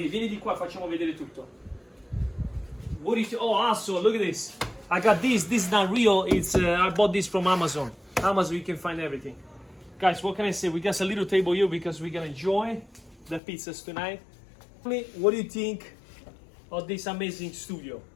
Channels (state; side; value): drops out; right; at 13.4 s